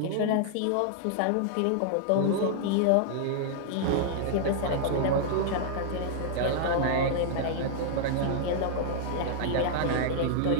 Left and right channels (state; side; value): different; both; correlation -0.01